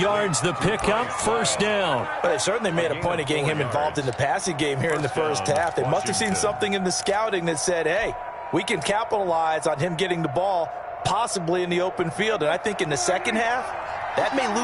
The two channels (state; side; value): identical; both; correlation 1.00